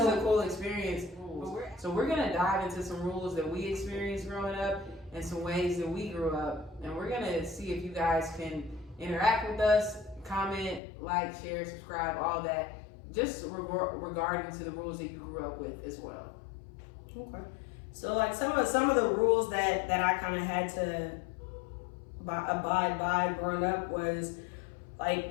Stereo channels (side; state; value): right; drops out; at 10.8 s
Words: cool experience. So we're going to dive into some rules that we experienced growing up and some ways that we grew up. And we're going to see if you guys can interact with us, comment, like, share, subscribe, all that, just regarding to the rules that you grew up with as well. Okay. So like some of the rules that I kind of had to abide by growing up was